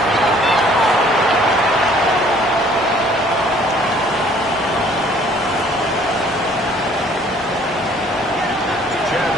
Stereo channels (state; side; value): normal; both; correlation 0.57